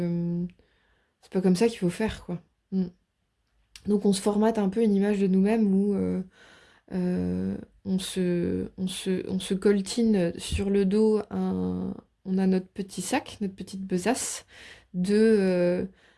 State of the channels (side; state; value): both; identical; correlation 1.00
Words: faut faire, quoi. Mm. Donc on se formate un peu une image de nous-mêmes où on se coltine sur le dos on a notre petit sac, notre petite besace de